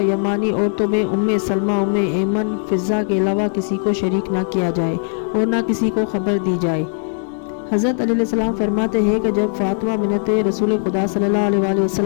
یمانی، عورتوں میں ام سلمہ، ام ایمن، فضہ کے علاوہ کسی کو شریک نہ کیا جائے اور نہ کسی کو خبر دی جائے۔ حضرت علی علیہ السلام فرماتے ہیں کہ جب فاطمہ بنت رسول خدا صلی اللہ علیہ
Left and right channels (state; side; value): silent; right; digital silence